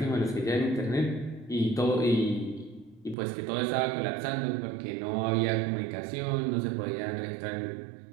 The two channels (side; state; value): left; drops out; at 3.2 s